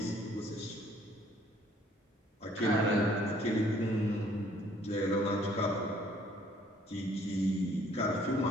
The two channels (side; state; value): both; normal; correlation 0.61